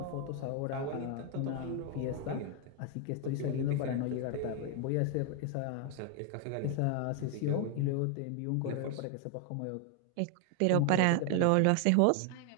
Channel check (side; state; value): both; different; correlation 0.00